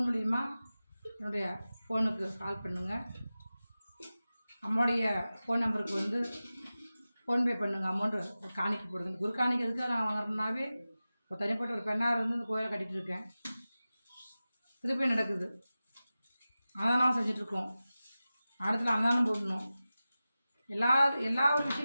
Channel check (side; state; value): both; inverted; correlation -0.95